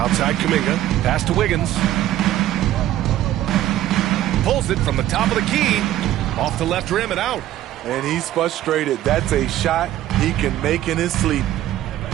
Kuminga. Pass to Wiggins. Pulls it from the top of the key. Off the left rim and out. And he's frustrated. That's a shot he can make in his sleep.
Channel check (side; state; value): left; quieter; 13.4 dB